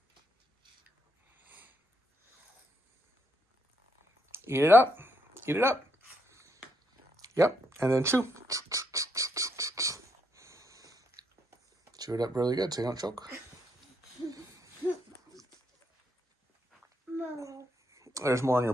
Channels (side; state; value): both; normal; correlation 0.76